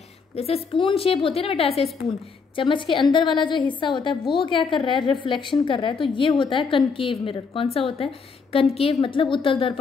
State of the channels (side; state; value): right; quieter; 5.2 dB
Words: जैसे स्पून शेप होती है ना बेटा, ऐसे स्पून, चम्मच के अंदर वाला जो हिस्सा होता है वो क्या कर रहा है, रिफ्लेक्शन कर रहा है, तो ये होता है कनकेव मिरर। कौन सा होता है, कनकेव मतलब उत्तल